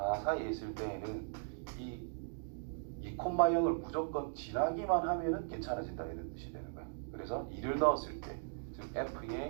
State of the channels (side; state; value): left; silent; digital silence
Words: 사이에 있을 때에는 이 2,0을 무조건 지나기만 하면은 괜찮아진다 이런 뜻이 되는 거야. 그래서 2를 넣었을 때, 즉